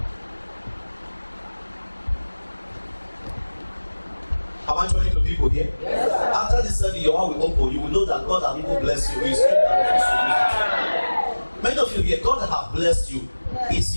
Am I talking to people here? Yes, after this service, your heart will open. You will know that God has even blessed you. Many of you here, God has blessed you. It's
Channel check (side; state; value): both; inverted; correlation -1.00